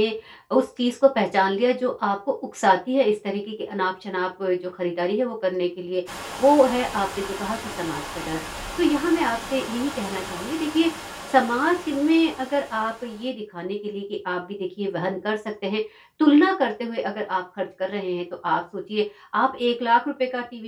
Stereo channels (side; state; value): both; identical; correlation 1.00